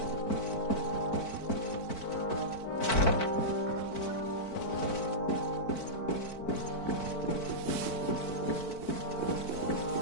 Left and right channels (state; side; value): late; right; 4.5 ms